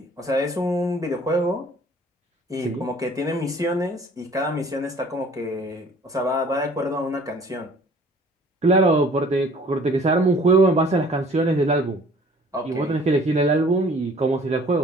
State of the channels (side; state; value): both; normal; correlation 0.53